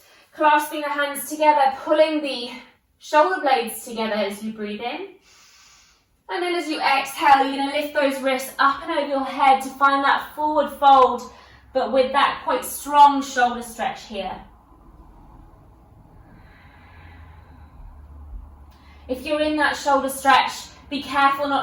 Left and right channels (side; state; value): both; identical; correlation 1.00